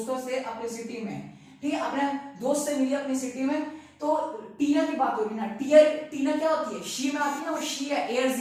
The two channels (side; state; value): both; identical; correlation 1.00